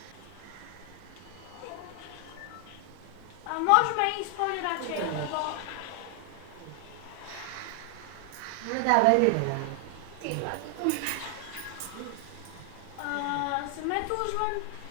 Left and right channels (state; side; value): different; both; correlation 0.00